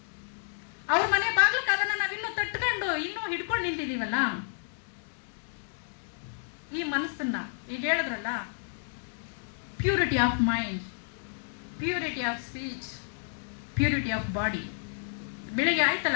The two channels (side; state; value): right; silent; digital silence